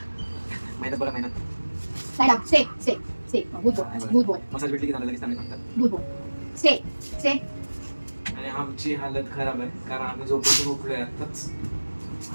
मेहनत बघा मेहनत. Lie down. Stay. Stay. Stay. Good boy. Good boy. Massage भेटली की झालं लगेच चांगले सांगतात. Good boy. Stay. Stay. आणि आमची हालत खराब आहे कारण आम्ही झोपेतून उठलोय आताच.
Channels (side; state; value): both; inverted; correlation -1.00